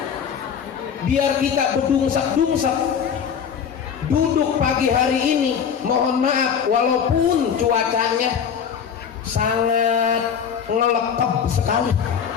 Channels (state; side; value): quieter; right; 7.6 dB